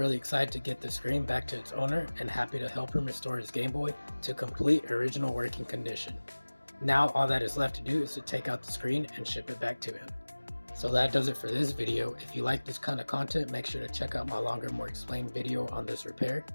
excited to get the screen back to its owner and happy to help him restore his Game Boy to complete original working condition. Now all that is left to do is to take out the screen and ship it back to him. So that does it for this video. If you like this kind of content, make sure to check out my longer, more explained video on this repair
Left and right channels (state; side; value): inverted; both; correlation -1.00